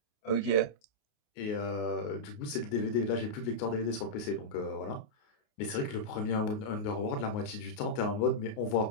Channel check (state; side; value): late; right; 28 ms